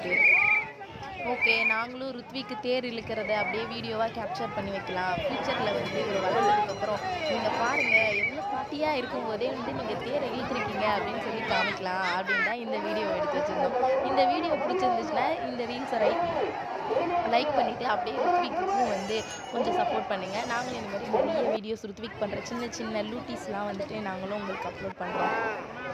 ஓகே, நாங்களும் ருத்விக்கு தேர் இழுக்கிறத அப்படியே வீடியோவாக கேப்சர் பண்ணி வைக்கலாம். ஃப்யூச்சரில் வந்து இவர் வளர்ந்ததுக்கப்புறம் நீங்கள் பாருங்கள் எவ்வளோ பாட்டியாக இருக்கும்போதே வந்து நீங்கள் தேரை இழுத்துருக்கீங்க அப்படின்னு சொல்லி காமிக்கலாம் அப்படின்னு தான் இந்த வீடியோ எடுத்து வச்சுருந்தோம். இந்த வீடியோ பிடிச்சிருந்துச்சுன்னா இந்த ரீல்ஸை லைக் பண்ணிவிட்டு அப்படியே ருத்விக்கும் வந்து கொஞ்சம் சப்போர்ட் பண்ணுங்கள். நாங்களும் இந்த மாதிரி நிறைய வீடியோஸ் ருத்விக் பண்ணுற சின்ன சின்ன லூட்டிஸ்லாம் வந்துட்டு நாங்களும் உங்களுக்கு அப்லோட் பண்ணுறோம்.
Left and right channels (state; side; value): identical; both; correlation 1.00